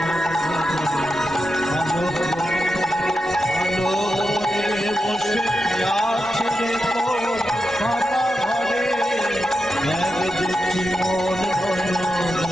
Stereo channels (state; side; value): normal; both; correlation 0.88